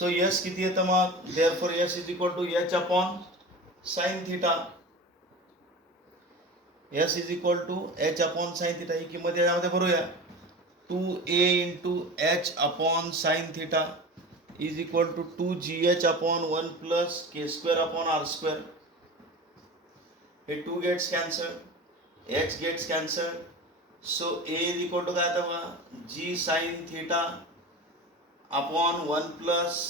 s किती येतं मग, therefore s is equal to h upon sine theta. S is equal to h upon sine theta. ही किंमत यामध्ये भरूया. 2a into h upon sine theta is equal to 2gh upon 1 plus K square upon R square. हे 2 gets cancel, h gets cancel. So a is equal to काय आता बघा, g sign theta upon 1 plus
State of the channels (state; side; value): normal; both; correlation 0.32